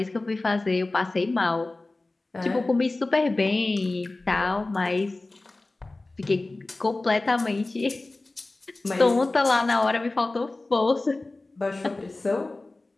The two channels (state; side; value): quieter; right; 3.1 dB